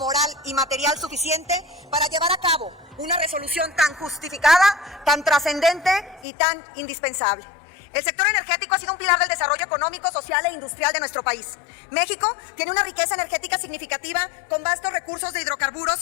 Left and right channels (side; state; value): right; drops out; at 6.2 s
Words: y material suficiente para llevar a cabo una resolución tan justificada, tan trascendente y tan indispensable. El sector energético ha sido un pilar del desarrollo económico, social e industrial de nuestro país. México tiene una riqueza energética significativa con vastos recursos de